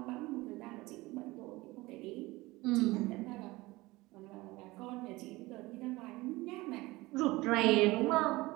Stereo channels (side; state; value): left; quieter; 20.7 dB